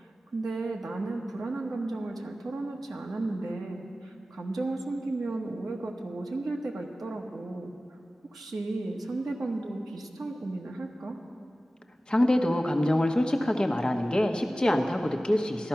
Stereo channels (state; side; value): normal; both; correlation 0.96